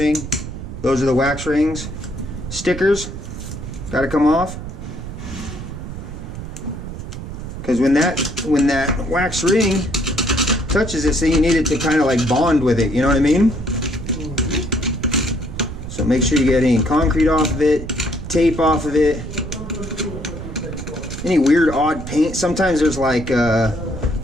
Those are the wax rings. Stickers got to come off. Because when that wax ring touches this thing, you need it to kind of like bond with it, you know what I mean? So make sure you get any concrete off of it, tape off of it, any weird odd paint. Sometimes there's like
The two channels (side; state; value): right; noise; rumble, 9 dB below the sound